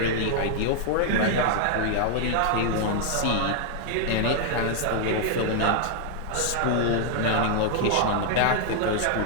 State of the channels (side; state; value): both; different; correlation 0.00